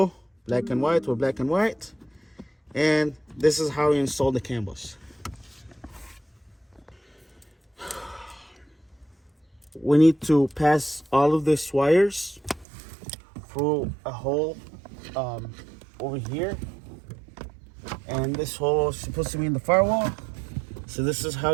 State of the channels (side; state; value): left; drops out; at 12.7 s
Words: black and white with black and white. And this is how you install the CAN bus. We need to pass all of these wires through a hole over here. And this hole is supposed to be in the firewall. So this is